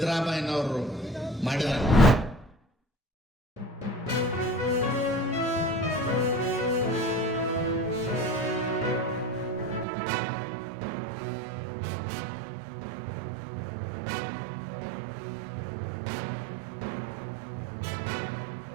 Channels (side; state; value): left; drops out; at 9.9 s